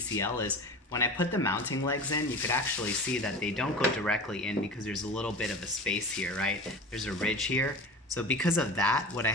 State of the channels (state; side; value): normal; both; correlation 0.33